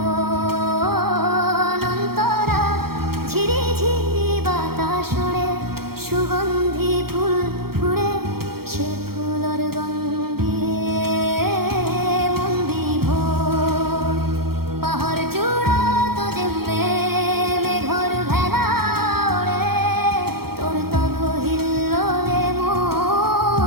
অন্তরা ঝিরি ঝিরি বাতাস ওড়ে সুগন্ধি ফুল ফুড়ে সে ফুলর গন্ধে মন বিভোর পাহাড় চূড়া তো যেমে মেঘর ভেলা ওড়ে তোর তব হিল্লোলে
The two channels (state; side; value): late; left; 0.94 ms